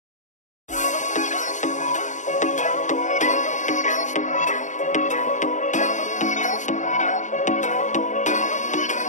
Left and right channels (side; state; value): right; late; 0.36 ms